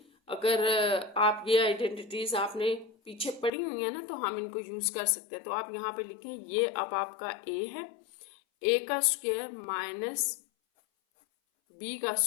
अगर आप ये आइडेंटिटीज आपने पीछे पड़ी हुई है ना, तो हम इनको यूज कर सकते हैं। तो आप यहाँ पे लिखें, ये अब आपका a है, a का स्क्वायर माइनस b का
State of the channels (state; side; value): drops out; right; at 3.5 s